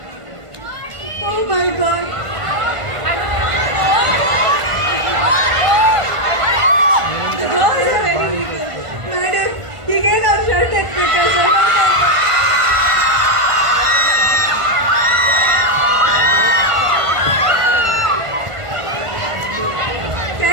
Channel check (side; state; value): left; late; 1.5 ms